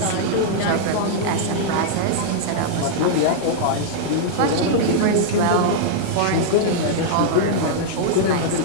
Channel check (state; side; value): different; both; correlation -0.01